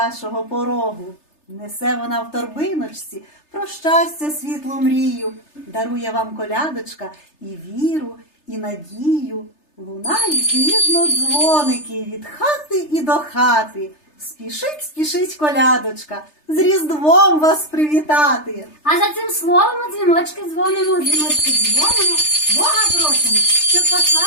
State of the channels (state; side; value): late; right; 3.3 ms